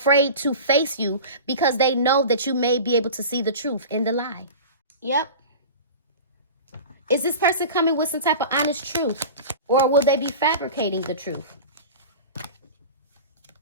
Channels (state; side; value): inverted; both; correlation -0.34